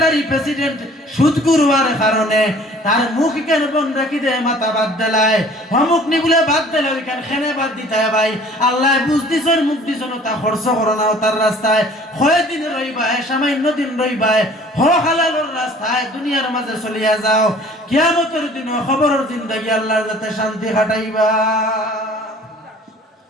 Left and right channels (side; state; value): both; normal; correlation 0.51